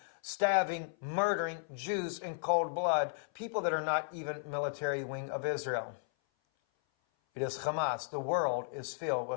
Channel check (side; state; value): right; silent; 55 dB below the other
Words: stabbing, murdering Jews in cold blood, people that are not even military wing of Israel. It is Hamas. The world is filled